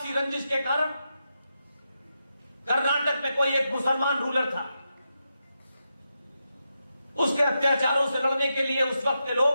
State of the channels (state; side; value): inverted; both; correlation -0.86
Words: रंजिश के कारण कर्नाटक में कोई एक मुसलमान रूलर था, उसके अत्याचारों से लड़ने के लिए उस वक्त के लोग